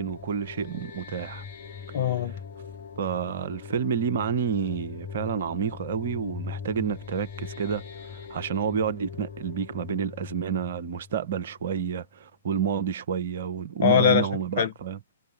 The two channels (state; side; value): inverted; both; correlation -0.33